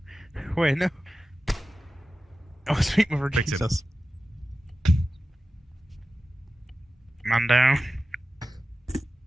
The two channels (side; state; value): both; normal; correlation 0.94